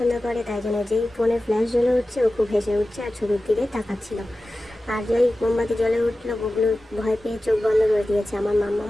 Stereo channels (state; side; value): normal; both; correlation 0.95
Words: করে, তাই জন্য যেই ফোনে ফ্ল্যাশ জ্বলে উঠছে ও খুব হেসে উঠছে আর ছবির দিকে তাকাচ্ছিল। আর যেই মোমবাতি জ্বলে উঠলো, বগলু ভয় পেয়ে চোখ বন্ধ করে দিয়েছে। আমার